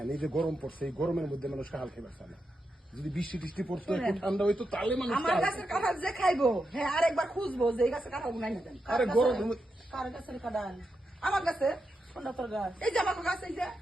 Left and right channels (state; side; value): normal; both; correlation 0.86